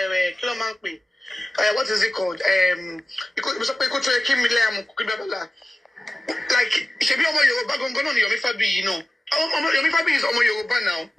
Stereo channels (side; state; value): both; normal; correlation 0.96